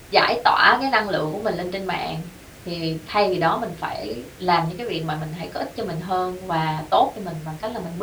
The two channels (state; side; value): identical; both; correlation 1.00